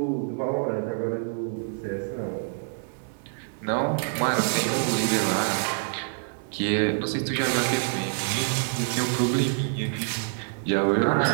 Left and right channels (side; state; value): left; silent; digital silence